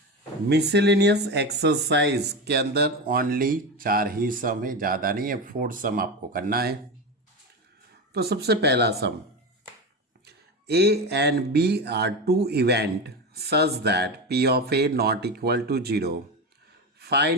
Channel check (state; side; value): normal; both; correlation 0.20